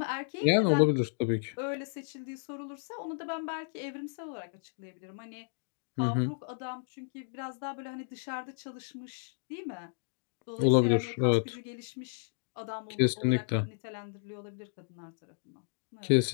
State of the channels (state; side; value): silent; right; digital silence